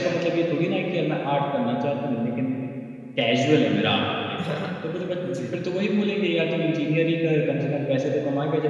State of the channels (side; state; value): both; identical; correlation 1.00